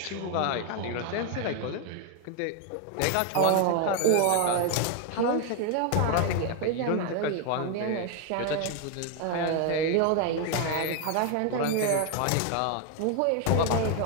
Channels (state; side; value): different; both; correlation 0.01